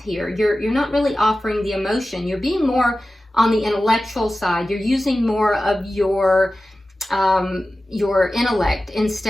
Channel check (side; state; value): both; normal; correlation 0.95